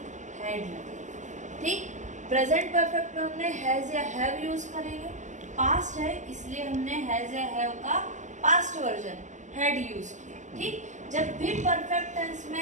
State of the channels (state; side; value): late; left; 0.35 ms